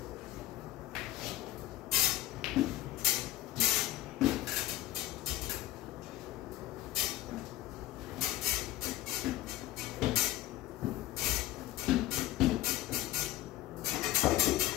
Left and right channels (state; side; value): quieter; right; 14.6 dB